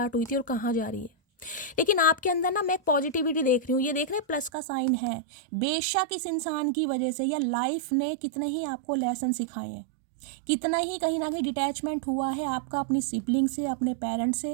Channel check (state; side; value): drops out; left; at 4.5 s